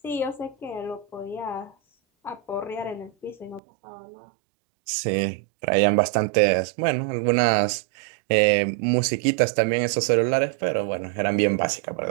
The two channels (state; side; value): drops out; left; at 3.6 s